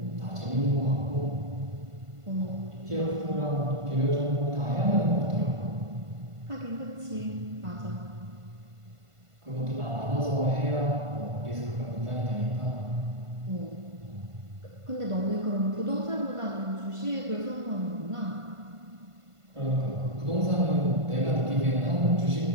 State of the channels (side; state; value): left; late; 1.5 ms